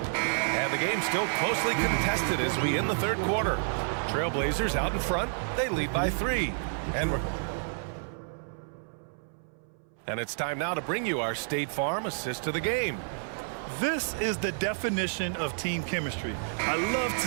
And the game's still closely contested as we end the third quarter. Trailblazers out in front. They lead by 3. And it's time now to bring you our State Farm assist to the game. This is the definition of team chemistry. I love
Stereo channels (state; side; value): silent; left; 58 dB below the other